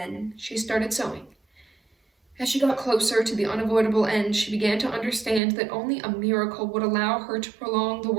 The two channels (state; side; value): drops out; left; at 5.4 s